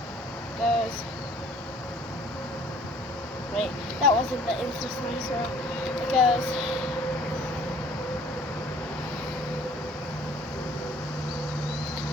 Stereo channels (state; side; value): normal; both; correlation 0.55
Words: Goes. Wait, that wasn't the Insta Slime Swirl. It goes.